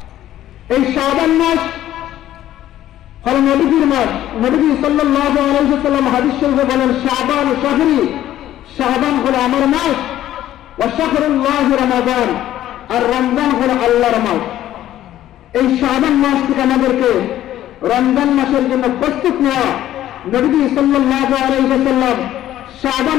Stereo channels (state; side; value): quieter; right; 12.9 dB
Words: এই শাবান মাস হলো নবীজির মাস। নবীজি সাল্লাল্লাহু আলাইহি ওয়াসাল্লাম হাদিস শরীফে বলেন, শাবান শাহরি, শাবান হলো আমার মাস, ওয়া শাহরুল্লাহি রমাদান, আর রমজান হলো আল্লাহর মাস। এই শাবান মাস থেকে আমাদেরকে রমজান মাসের জন্য প্রস্তুত নেওয়া। নবীজি সাল্লাল্লাহু আলাইহি ওয়াসাল্লাম